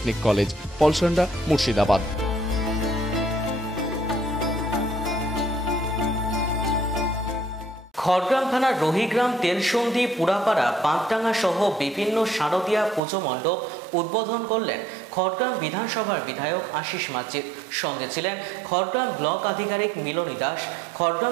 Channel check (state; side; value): drops out; left; at 13.0 s